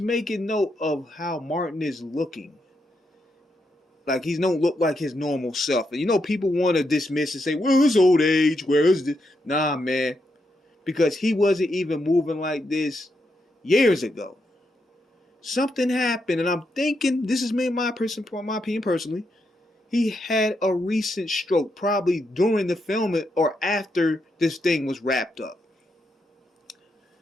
note of how Martin is looking. Like, he don't look like his normal self. And you know, people want to dismiss and say, well, it's old age. Where is this? Nah, man. Because he wasn't even moving like this years ago. Something happened, and I'm thinking, this is me, my opinion personally, he had a recent stroke, probably during the filming or after this thing was wrapped up.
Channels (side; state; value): both; normal; correlation 0.82